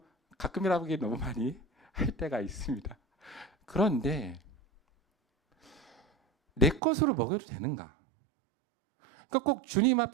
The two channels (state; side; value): drops out; left; at 6.8 s